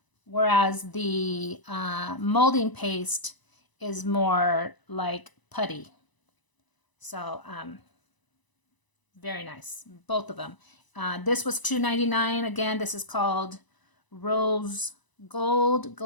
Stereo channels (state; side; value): late; right; 1.0 ms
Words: Whereas the molding paste is more like putty. So very nice, both of them. This was $2.99. Again, this is called Rose Gold